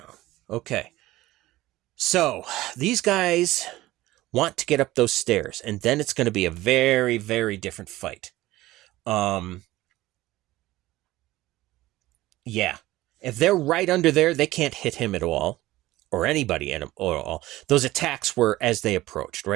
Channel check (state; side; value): quieter; left; 17.2 dB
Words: Okay. So these guys want to get up those stairs, and then it's going to be a very, very different fight. Yeah. If they're right under there, they can't hit him at all, or anybody at him at all. Those attacks were as they approached,